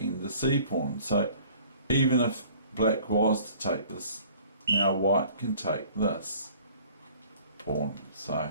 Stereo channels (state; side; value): inverted; both; correlation -0.52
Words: the c pawn, so even if black was to take this, now white can take this pawn,